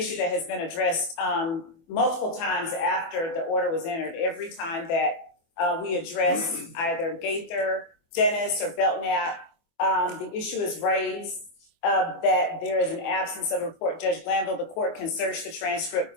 that has been addressed multiple times after the order was entered. Every time that we address either Gaither, Dennis, or Belknap, the issue is raised that there is an absence of a report. Judge Glanville, the court can search the transcript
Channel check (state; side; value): late; right; 24 ms